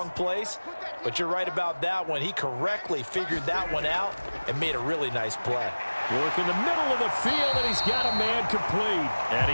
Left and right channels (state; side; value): inverted; both; correlation -1.00